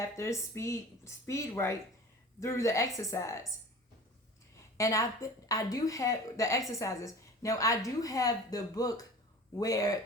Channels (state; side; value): normal; both; correlation 0.40